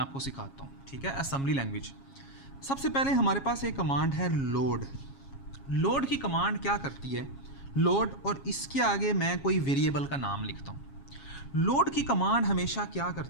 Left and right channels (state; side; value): late; right; 7.3 ms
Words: सिखाता हूँ, ठीक है, असेंबली लैंग्वेज। सबसे पहले हमारे पास एक कमांड है लोड। लोड की कमांड क्या करती है? लोड और इसके आगे मैं कोई वेरिएबल का नाम लिखता हूँ। लोड की कमांड हमेशा क्या